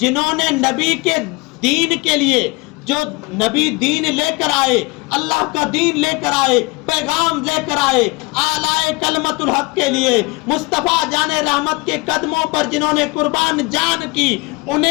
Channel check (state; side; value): quieter; right; 26.1 dB